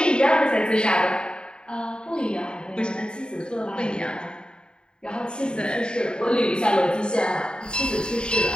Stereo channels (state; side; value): late; right; 0.049 ms